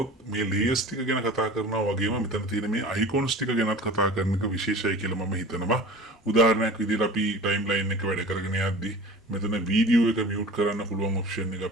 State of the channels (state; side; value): normal; both; correlation 0.39